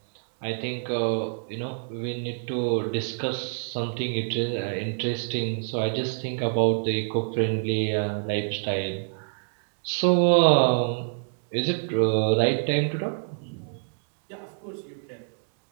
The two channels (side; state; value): left; silent; digital silence